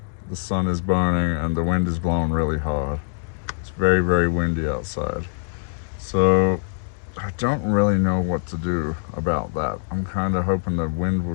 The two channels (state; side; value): silent; right; digital silence